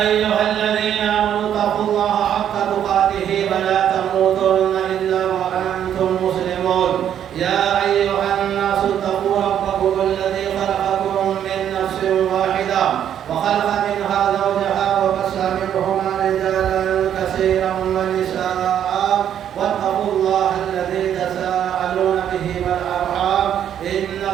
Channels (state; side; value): quieter; left; 9.8 dB